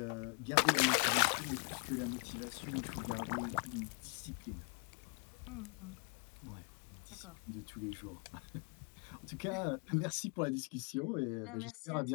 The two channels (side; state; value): right; quieter; 36.9 dB